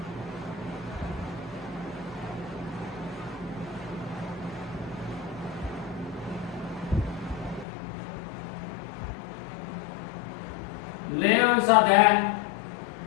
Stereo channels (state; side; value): drops out; right; at 7.7 s